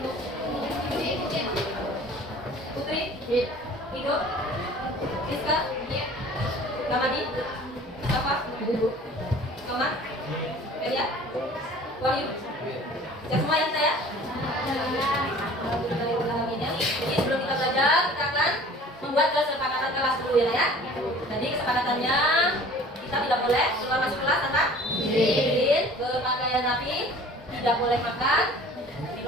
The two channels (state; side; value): normal; both; correlation 0.47